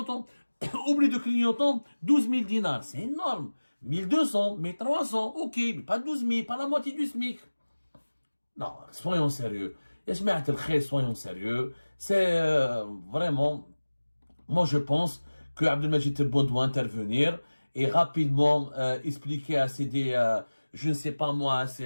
oubli de clignotant, 12 000 dinars. C'est énorme. 1200, 1300, ok, mais pas 12 000, pas la moitié du SMIC. Non, soyons sérieux. Soyons sérieux. C'est vraiment, moi je pense que Abdelmajid Tebboune doit intervenir et rapidement expliquer à je ne sais pas moi, à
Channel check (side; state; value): both; inverted; correlation -1.00